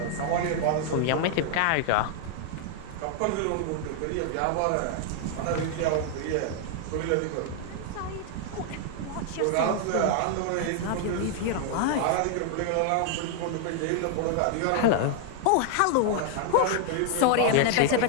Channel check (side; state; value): both; different; correlation 0.00